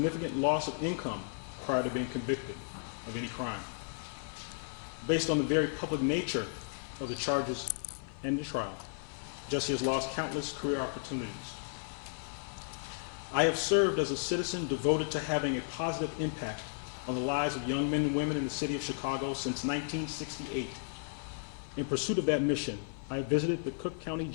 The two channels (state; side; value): silent; right; 55 dB below the other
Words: loss of income prior to being convicted of any crime. Based on the very public nature of the charges and the trial, Jussie has lost countless career opportunities. I have served as a citizen devoted to having a positive impact on the lives of young men and women in the city of Chicago since 1968. In pursuit of that mission, I have visited the Cook County